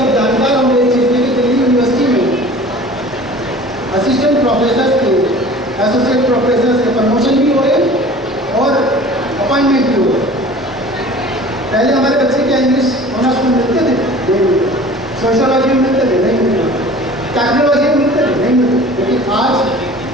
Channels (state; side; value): normal; both; correlation 0.44